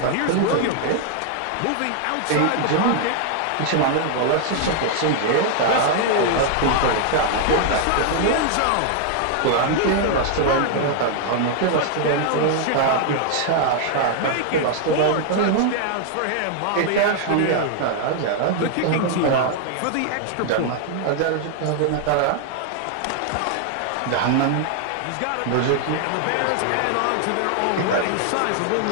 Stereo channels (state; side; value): different; both; correlation 0.00